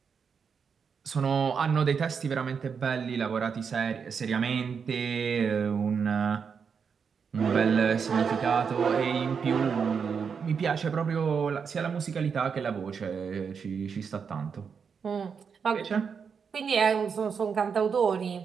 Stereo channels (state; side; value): quieter; left; 6.3 dB